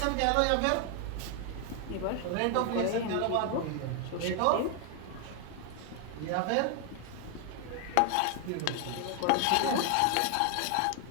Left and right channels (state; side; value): different; both; correlation 0.01